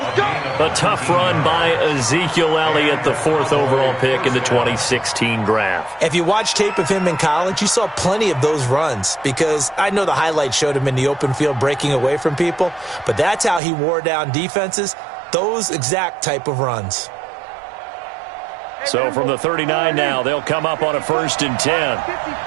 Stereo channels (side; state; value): left; drops out; at 13.6 s